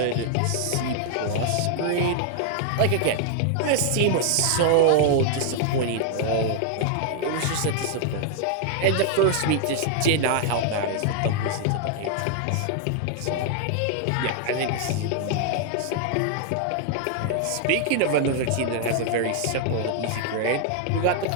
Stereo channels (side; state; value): both; different; correlation 0.00